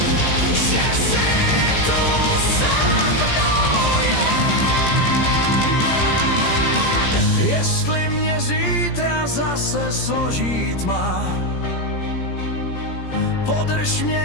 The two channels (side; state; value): right; late; 17 ms